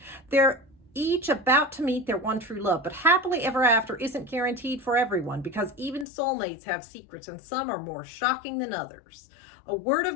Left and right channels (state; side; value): drops out; right; at 6.1 s